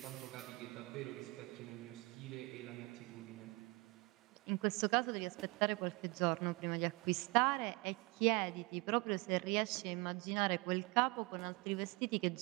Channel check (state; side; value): quieter; left; 26.5 dB